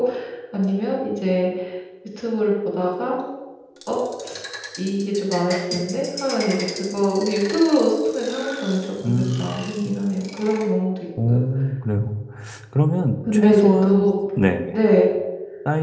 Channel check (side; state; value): both; identical; correlation 1.00